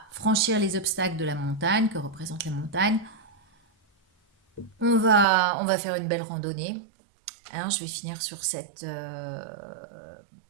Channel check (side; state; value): left; drops out; at 5.2 s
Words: franchir les obstacles de la montagne, que représente la montagne. On va faire une belle randonnée. Alors, je vais finir sur cette